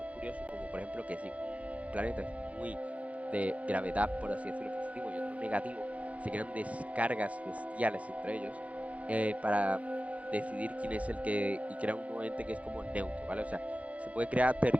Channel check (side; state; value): left; late; 0.066 ms